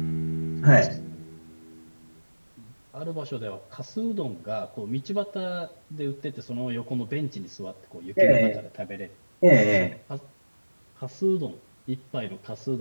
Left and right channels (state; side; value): inverted; both; correlation -1.00